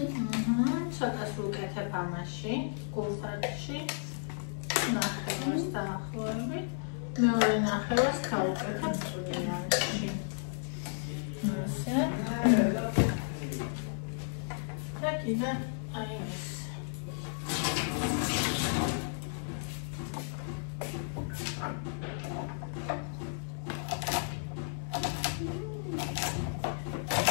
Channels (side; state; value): right; silent; 56 dB below the other